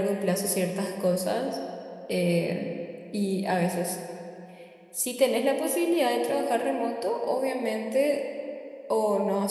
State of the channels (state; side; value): identical; both; correlation 1.00